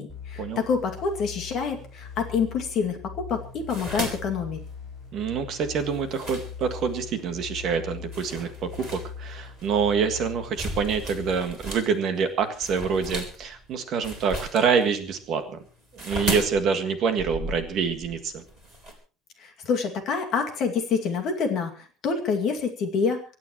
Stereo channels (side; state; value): both; normal; correlation 0.46